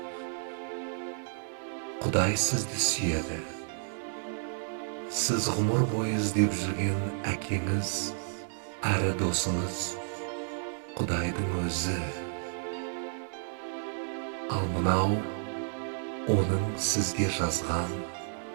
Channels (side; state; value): left; silent; digital silence